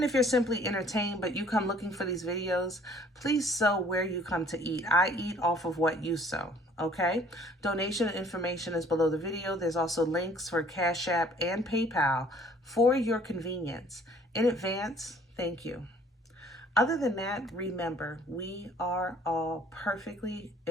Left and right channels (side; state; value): both; normal; correlation 0.57